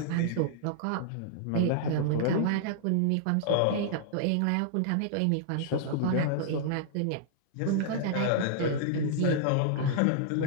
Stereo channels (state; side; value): different; both; correlation -0.01